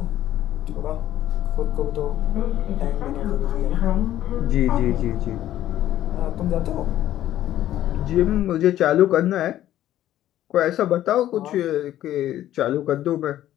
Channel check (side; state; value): right; quieter; 12.9 dB